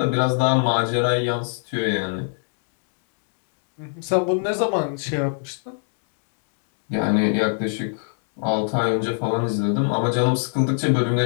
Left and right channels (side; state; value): right; silent; digital silence